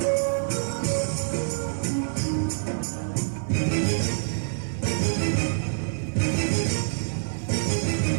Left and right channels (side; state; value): left; silent; digital silence